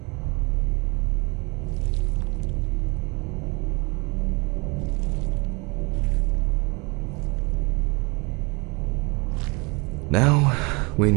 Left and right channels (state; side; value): quieter; left; 29.1 dB